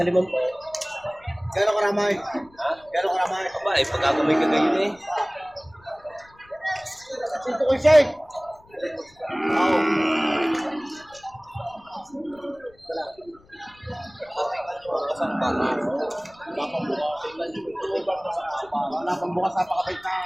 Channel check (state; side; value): noise; left; rumble, 28 dB below the sound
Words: limang po. Gano'ng karamay? Ha? Gano'ng karamay? Aba, eh, pagkakamay ka ngayon eh. Sinto ko siya eh. Oo. Wala pang bukas sa pakapit na.